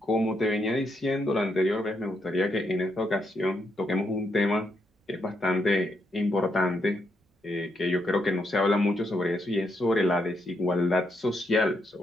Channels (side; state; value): both; normal; correlation 0.79